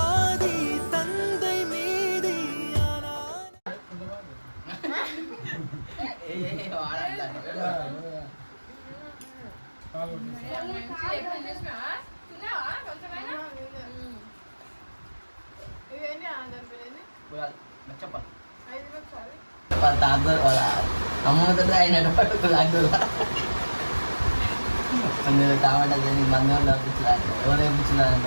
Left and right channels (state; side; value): inverted; both; correlation -1.00